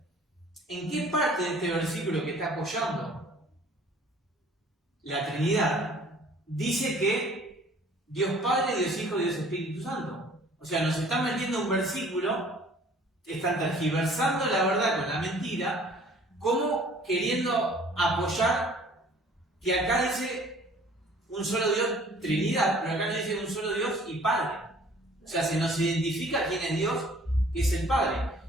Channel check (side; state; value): both; normal; correlation 0.53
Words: ¿en qué parte de este versículo que está apoyando la Trinidad dice que Dios Padre, Dios Hijo y Dios Espíritu Santo? O sea, nos está metiendo un versículo están tergiversando la verdad con la mentira, como queriendo apoyar que acá dice un solo Dios, Trinidad, pero acá no dice un solo Dios y Padre. O sea, se nos identifica quién es Dios, que es el Padre.